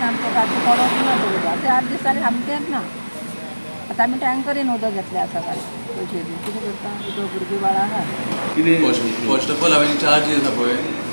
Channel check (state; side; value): inverted; both; correlation -1.00